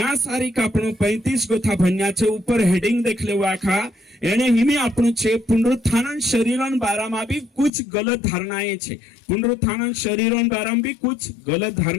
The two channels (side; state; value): right; drops out; at 7.7 s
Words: सारी का आपणो 35 गोथा भन्या छे ऊपर हेडिंग देख ले आखा एने हिमी आपणो छे पुनरुत्थान शरीरन बारामा भी कुछ गलत धारणाएं छे पुनरुत्थान शरीरन बारामा भी कुछ गलत